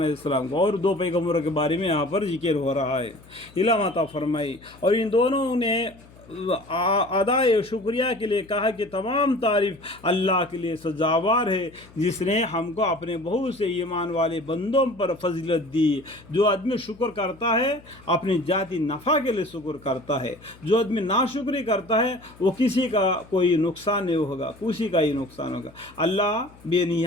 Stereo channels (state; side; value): noise; left; hum, 24 dB below the sound